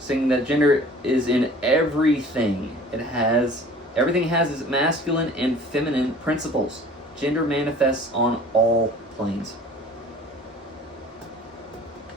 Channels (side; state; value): both; normal; correlation 0.47